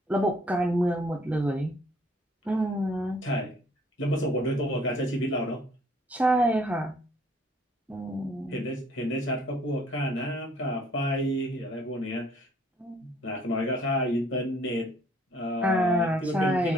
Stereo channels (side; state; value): both; normal; correlation 0.60